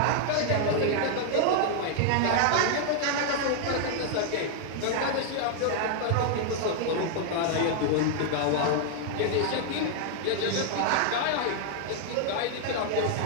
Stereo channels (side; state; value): both; different; correlation 0.00